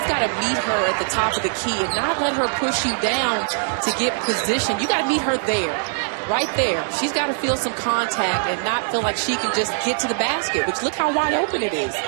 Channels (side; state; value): left; silent; digital silence